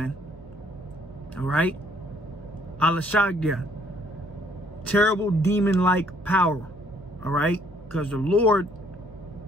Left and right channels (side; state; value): right; noise; hum, 23 dB below the sound